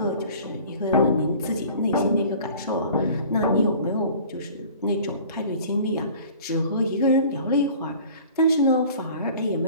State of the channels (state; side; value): inverted; both; correlation -0.46